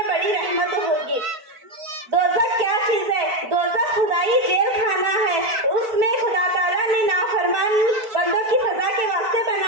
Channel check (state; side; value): late; left; 4.6 ms